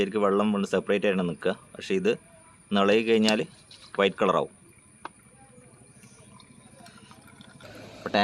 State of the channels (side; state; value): both; identical; correlation 1.00